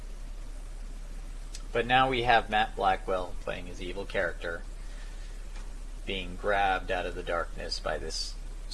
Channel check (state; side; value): identical; both; correlation 1.00